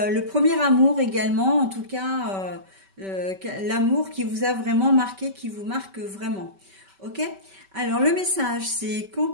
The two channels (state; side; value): late; left; 5.2 ms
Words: premier amour également, en tout cas, l'amour qui vous a vraiment marqué, qui vous marque vraiment. Ok? Alors, le message, c'est